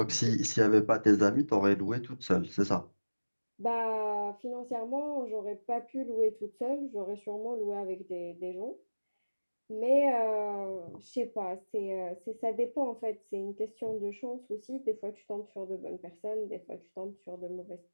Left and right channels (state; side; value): inverted; both; correlation -1.00